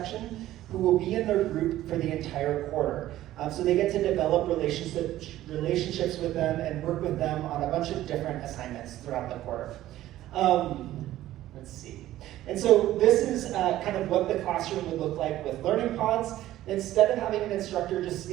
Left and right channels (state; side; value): quieter; left; 14.3 dB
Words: who will be in their group for the entire quarter. So they get to develop relationships with them and work with them on a bunch of different assignments throughout the quarter. Let's see. And so this is kind of what the classroom would look like with learning pods. Instead of having an instructor just